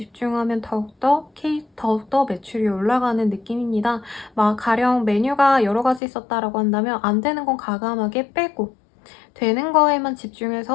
더욱더 매출이 올라가는 느낌입니다. 가령 메뉴가 여러 가지 있었다라고 한다면 안 되는 건 과감하게 빼고 되는 거에만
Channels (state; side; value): drops out; right; at 6.0 s